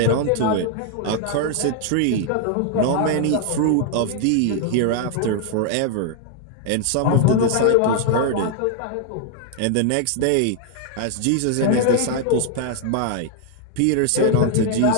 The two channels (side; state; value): both; different; correlation 0.00